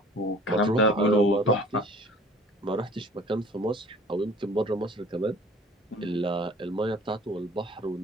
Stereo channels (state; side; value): normal; both; correlation 0.49